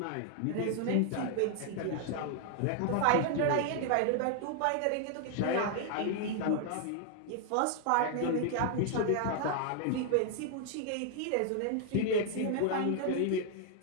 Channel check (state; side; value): different; both; correlation 0.00